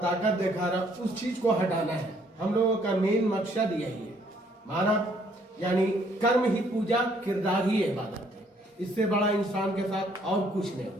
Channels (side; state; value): both; normal; correlation 0.65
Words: दिखा रहा, उस चीज़ को हटाना है। हम लोगों का मेन मकसद यही है। मानव यानी कर्म ही पूजा, किरदार ही इबादत है। इससे बड़ा इंसान के साथ और कुछ नहीं हो